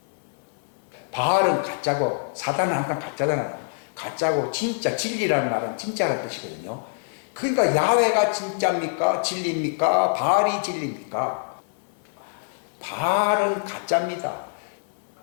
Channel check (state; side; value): silent; right; 62 dB below the other